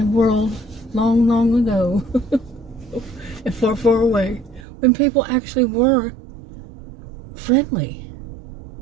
world long, long ago and far, far away when people actually were friendly.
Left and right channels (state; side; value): drops out; left; at 4.6 s